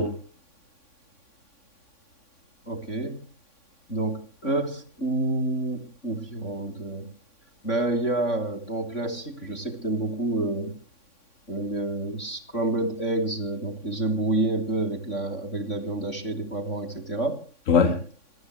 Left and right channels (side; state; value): right; late; 3.6 ms